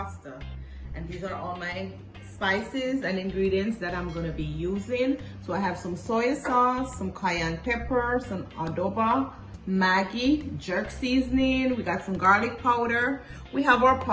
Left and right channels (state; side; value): identical; both; correlation 1.00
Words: and these are all my spices and ingredients that I'm going to be using. So I have some soy sauce, some cayenne pepper, some adobo, Maggi, jerk seasoning, we got some garlic powder, we have our